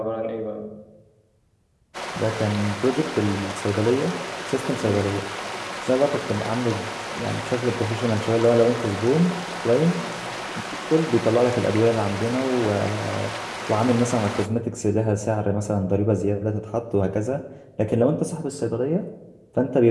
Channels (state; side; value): identical; both; correlation 1.00